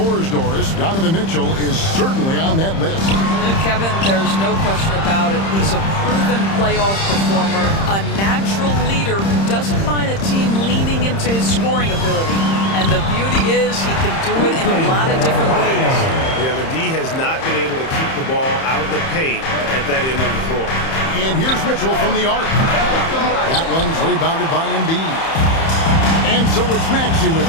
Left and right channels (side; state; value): right; late; 31 ms